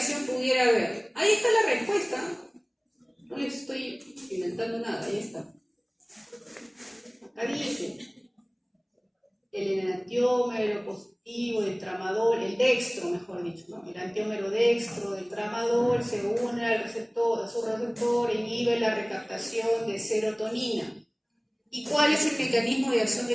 pudiera haber? Ahí está la respuesta. No les estoy inventando nada, ahí está. Acá dice, el enantiómero positivo del tramadol, el dextro, mejor dicho, ¿no? El enantiómero dextro del tramadol se une a su receptor, inhibe la recaptación de serotonina. ¿Y cuál es el mecanismo de acción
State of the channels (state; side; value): identical; both; correlation 1.00